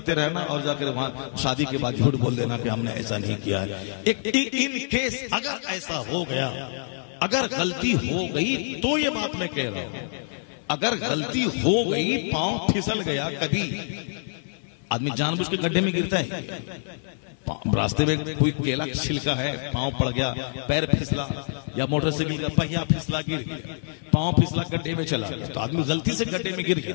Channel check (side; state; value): right; silent; 60 dB below the other